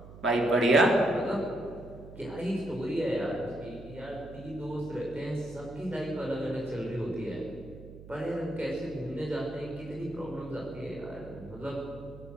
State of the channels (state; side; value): noise; right; hum, 16 dB below the sound